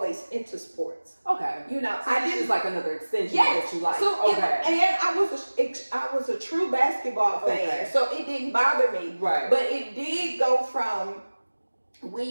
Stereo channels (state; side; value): inverted; both; correlation -1.00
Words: into sports. Okay. You know, so I didn't, like another extension of what you like. So and I was a true basketball fan, so it didn't bother me. Right. But it did go from,